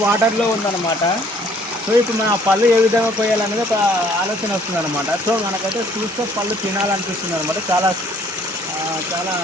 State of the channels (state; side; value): normal; both; correlation 0.60